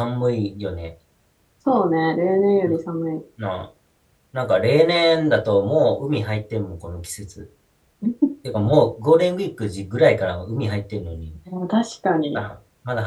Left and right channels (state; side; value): identical; both; correlation 1.00